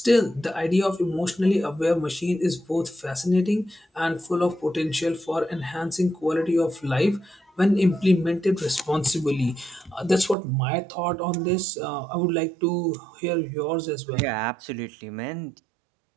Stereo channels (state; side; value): drops out; left; at 10.4 s